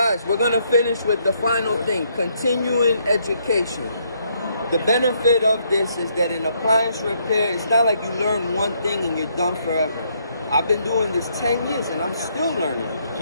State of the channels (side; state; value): both; inverted; correlation -0.72